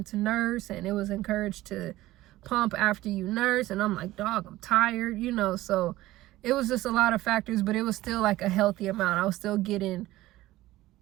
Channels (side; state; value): left; quieter; 16.7 dB